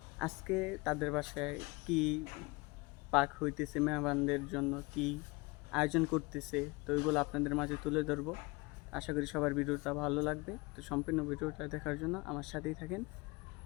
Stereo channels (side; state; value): right; quieter; 25.6 dB